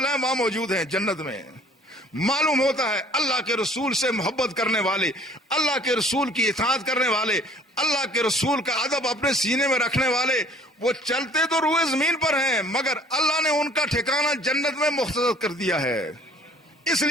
وہاں موجود ہیں جنت میں. معلوم ہوتا ہے اللہ کے رسول سے محبت کرنے والے, اللہ کے رسول کی اطاعت کرنے والے, اللہ کے رسول کا ادب اپنے سینے میں رکھنے والے, وہ چلتے تو روئے زمین پر ہیں مگر اللہ نے ان کا ٹھکانہ جنت میں مختصر کر دیا ہے. اس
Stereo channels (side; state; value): both; normal; correlation 0.53